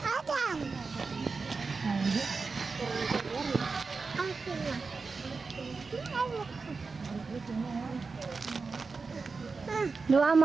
Adam! Ang sila. Dua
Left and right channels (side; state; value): left; quieter; 4.4 dB